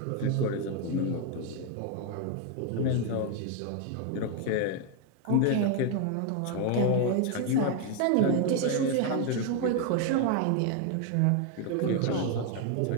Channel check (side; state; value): both; different; correlation 0.01